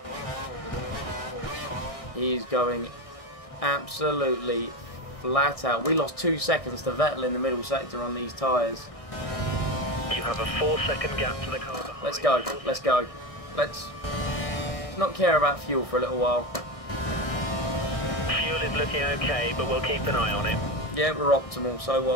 He's going absolutely flat out. We lost 2 seconds to Vettel in the middle sector on these tyres. You have a 4-second gap to the car behind. Let's go, let's go. Let's not care about fuel for a little while. Fuel is looking okay, but we'll keep an eye on it. Yeah, we're optimal, so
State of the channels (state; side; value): late; right; 1.6 ms